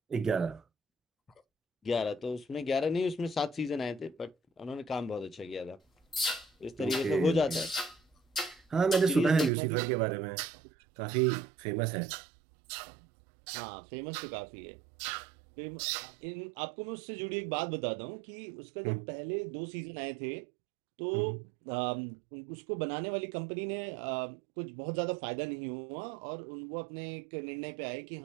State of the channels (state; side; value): drops out; left; at 9.5 s